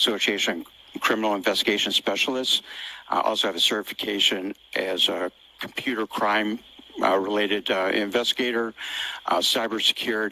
of Criminal Investigation Specialists. I also have a certification as a computer crime related investigator,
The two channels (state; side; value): identical; both; correlation 1.00